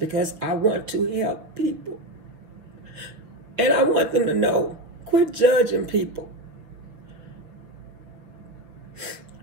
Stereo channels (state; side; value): late; left; 6.3 ms